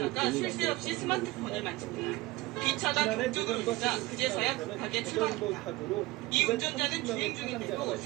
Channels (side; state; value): left; quieter; 20.1 dB